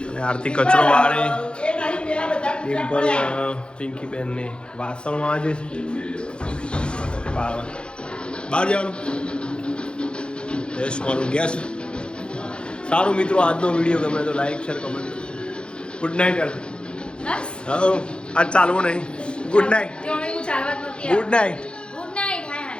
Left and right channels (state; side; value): late; right; 0.054 ms